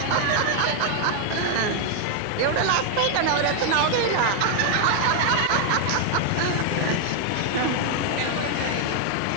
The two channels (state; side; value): different; both; correlation 0.00